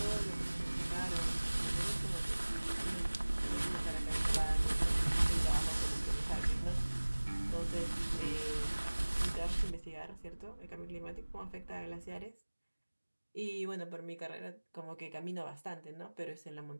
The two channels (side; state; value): both; inverted; correlation -1.00